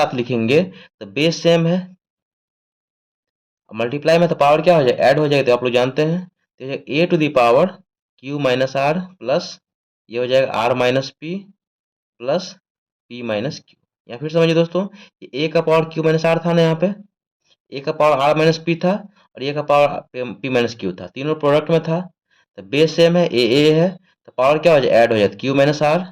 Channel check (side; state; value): both; identical; correlation 1.00